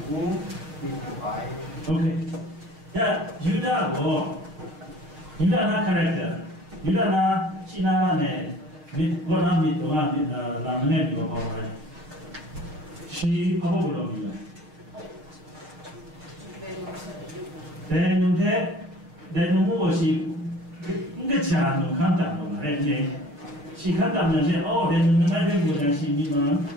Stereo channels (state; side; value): late; left; 6.6 ms